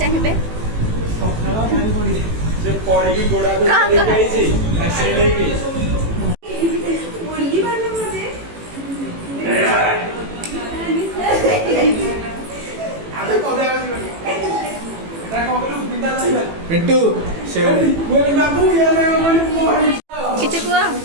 ଚାହିଁବେ? ପିଣ୍ଟୁ କିଛି କୁହ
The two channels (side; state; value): left; late; 18 ms